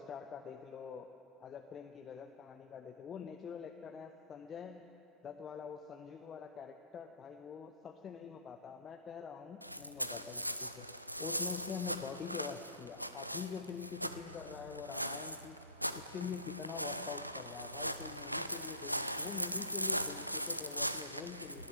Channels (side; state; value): both; inverted; correlation -0.43